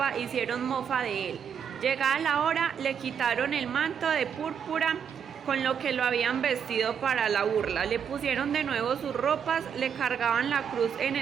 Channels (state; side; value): quieter; left; 7.7 dB